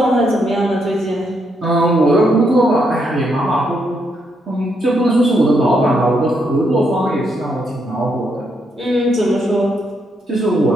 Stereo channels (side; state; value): both; normal; correlation 0.78